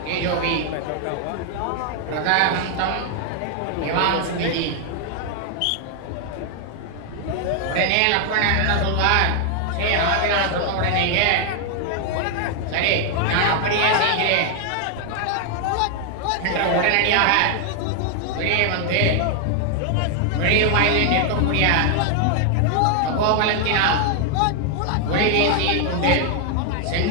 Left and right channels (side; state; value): both; different; correlation 0.00